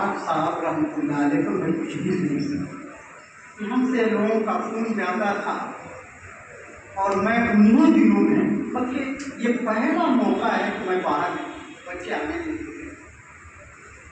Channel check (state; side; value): identical; both; correlation 1.00